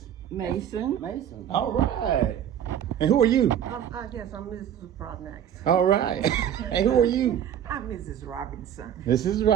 Mason. Mason. All right. And who are you? I guess I'm Mrs. Prodnax. All right. And who are you? I'm Mrs. Robinson. This is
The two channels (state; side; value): quieter; left; 9.8 dB